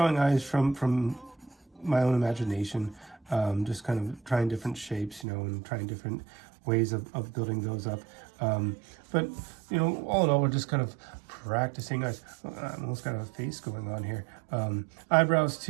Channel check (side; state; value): left; drops out; at 5.2 s